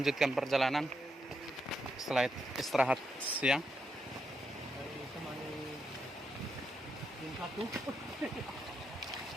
perjalanan setelah istirahat siang.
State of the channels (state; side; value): normal; both; correlation 0.82